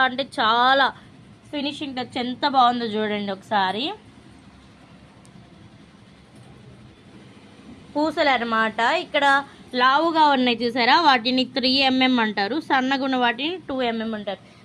అంటే చాలా ఫినిషింగ్ టచ్ ఎంత బాగుందో చూడండి ఒకసారి. పూసలు అన్నమాట. ఇక్కడ లావుగా ఉన్నాయి చూసారా, వాటిని 3mm అంటారు, సన్నగా ఉన్న వాటిని 2mm అంటారు.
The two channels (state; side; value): identical; both; correlation 1.00